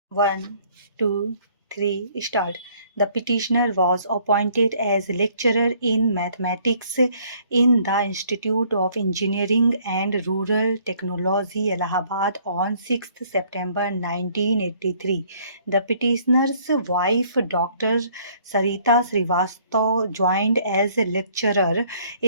1, 2, 3, start. The petitioner was appointed as lecturer in mathematics in the Institute of Engineering and Rural Technology, Allahabad on 6th September 1983. The petitioner's wife, Dr. Sarita Srivastava, joined as a lecturer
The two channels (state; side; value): inverted; both; correlation -0.62